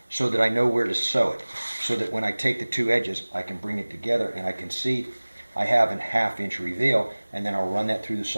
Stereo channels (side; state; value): both; inverted; correlation -1.00